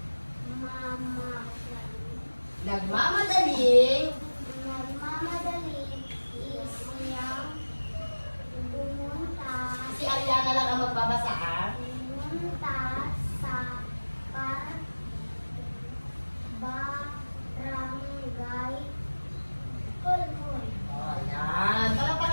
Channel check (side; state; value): both; inverted; correlation -1.00